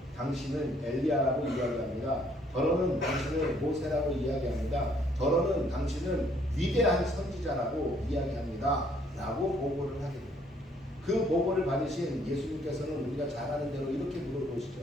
당신은 엘리야라고 이야기합니다. 더러는 당신은 모세라고 이야기합니다. 더러는 당신은 위대한 선지자라고 이야기합니다. 라고 보고를 하게 됩니다. 그 보고를 받으신 예수님께서는 우리가 잘 아는 대로 이렇게 물어보시죠.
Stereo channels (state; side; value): normal; both; correlation 0.65